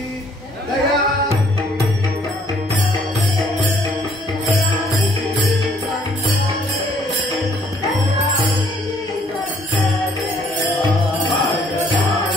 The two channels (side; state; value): both; normal; correlation 0.63